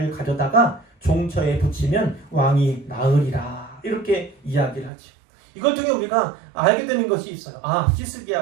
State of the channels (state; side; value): drops out; left; at 4.9 s